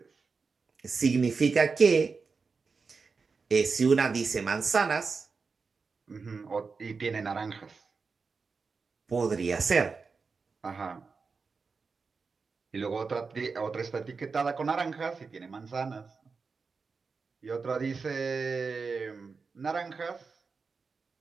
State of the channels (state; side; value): quieter; left; 4.8 dB